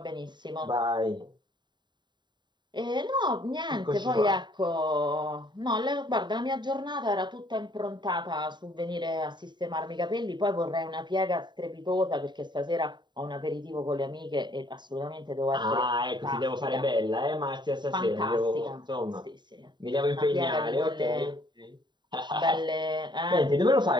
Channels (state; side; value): late; left; 0.22 ms